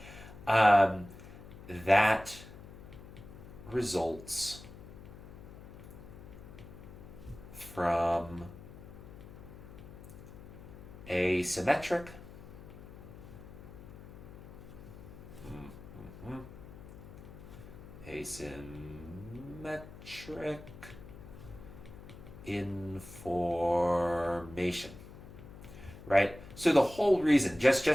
That results from asymmetric information, right? So the whole reason, just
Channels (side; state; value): left; noise; hum, 16 dB below the sound